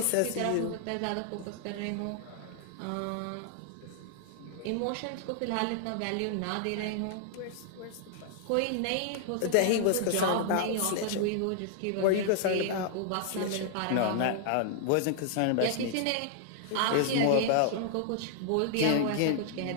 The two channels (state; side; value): different; both; correlation -0.01